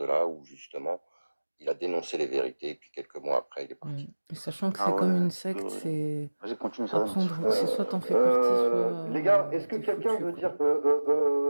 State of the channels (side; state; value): both; inverted; correlation -1.00